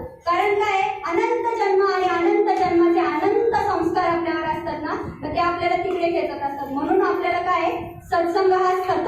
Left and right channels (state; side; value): identical; both; correlation 1.00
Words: कारण काय, अनंत जन्म आणि अनंत जन्माचे अनंत संस्कार आपल्यावर असतात ना, तर ते आपल्याला तिकडे खेचत असतात. म्हणून आपल्याला काय सत्संग हा